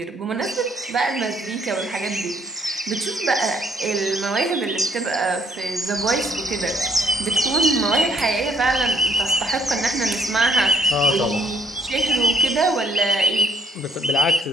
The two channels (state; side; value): normal; both; correlation 0.67